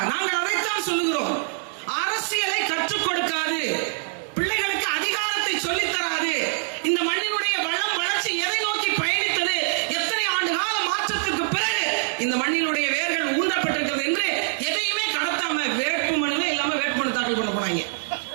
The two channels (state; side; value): silent; left; digital silence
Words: நாங்கள் அதைத்தான் சொல்லுகிறோம். அரசியலை கற்றுக் கொடுக்காது, பிள்ளைகளுக்கு அதிகாரத்தை சொல்லித் தராது. இந்த மண்ணினுடைய வளம் வளர்ச்சி எதை நோக்கி பயணித்தது, எத்தனை ஆண்டு கால மாற்றத்திற்கு பிறகு இந்த மண்ணினுடைய வேர்கள் ஊன்றப்பட்டிருக்கிறது என்று எதையுமே கடத்தாம வேட்புமனுவே இல்லாம வேட்புமனு தாக்கல் பண்ண போனாங்க.